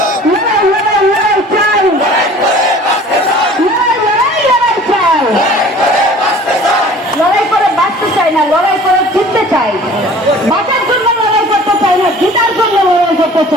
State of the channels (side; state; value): both; normal; correlation 0.47